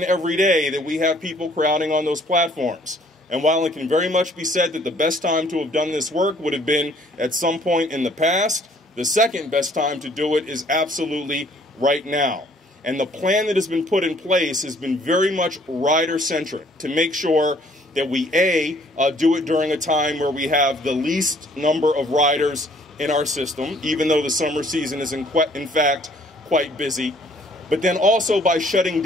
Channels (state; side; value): normal; both; correlation 0.60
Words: every day that we have people crowding on those platforms. And while it can very much be said that the best time to have done this work would have been at some point in the past, the second best time to do it is absolutely right now. And the plan that has been put in place has been very much rider-centric to make sure that we, A, do it during a time where we have the least number of riders in our system, even though the summer season is in fact quite busy. But then also by shutting